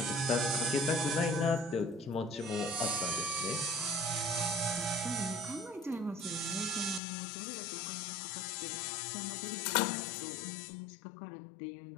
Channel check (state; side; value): drops out; right; at 7.0 s